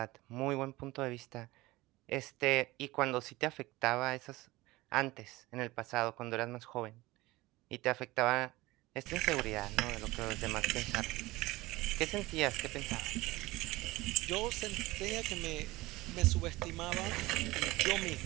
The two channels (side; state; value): left; quieter; 19.9 dB